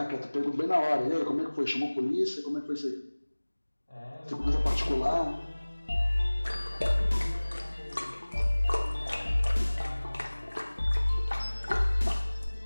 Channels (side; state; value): both; inverted; correlation -1.00